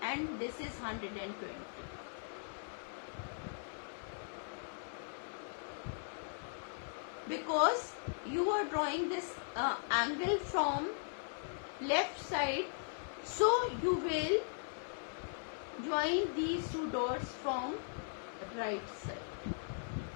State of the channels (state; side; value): silent; right; digital silence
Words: this is 120. Because you are drawing this angle from left side, so you will join these two dots from right side.